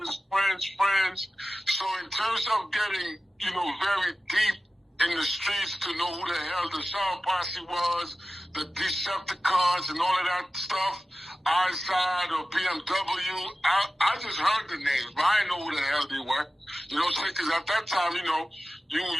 friends. So in terms of getting, very deep in the streets to know who the hell the Shower Posse was, the Decepticons and all of that stuff, Eyeside or BMW, I just heard the names, but I didn't know who the hell they were. You know what I'm saying? Because at that time, you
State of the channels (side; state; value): both; normal; correlation 0.95